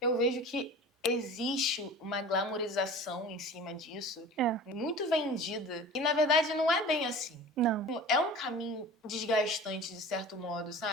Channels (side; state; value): both; normal; correlation 0.39